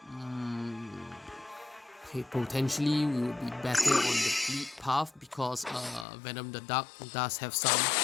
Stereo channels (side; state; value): right; drops out; at 6.1 s